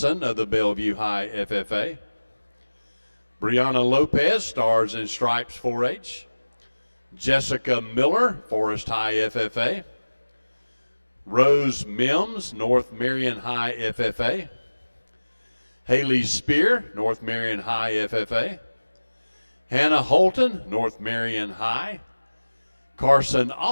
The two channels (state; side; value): inverted; both; correlation -1.00